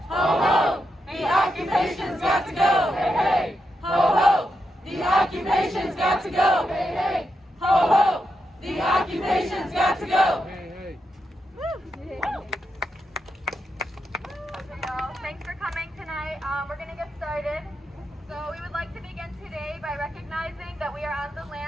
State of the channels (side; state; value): both; normal; correlation 0.85